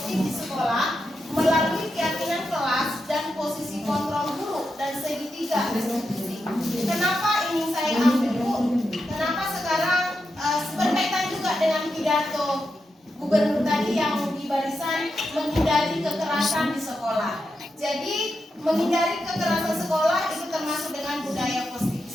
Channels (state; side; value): normal; both; correlation 0.87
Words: di sekolah melalui keyakinan kelas dan posisi kontrol guru dan segitiga restitusi. Kenapa ini saya ambil, Bu? Kenapa sekarang berkaitan juga dengan pidato Gubernur tadi yang di barisan menghindari kekerasan di sekolah. Jadi menghindari kekerasan sekolah itu termasuk dengan budaya positif di